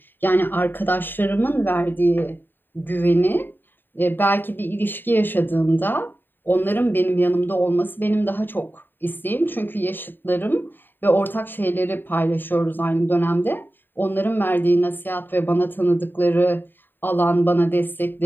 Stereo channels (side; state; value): right; late; 0.094 ms